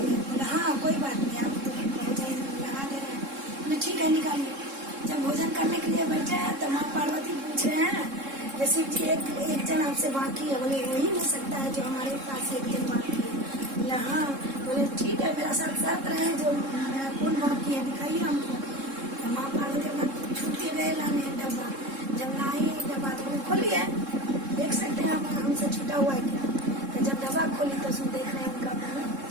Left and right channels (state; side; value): late; left; 3.7 ms